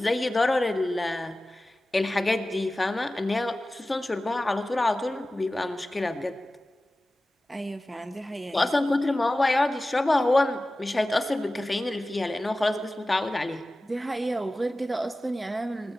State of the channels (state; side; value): normal; both; correlation 0.96